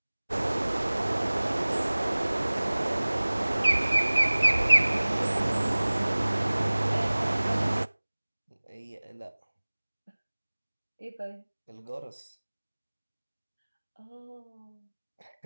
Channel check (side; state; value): both; inverted; correlation -1.00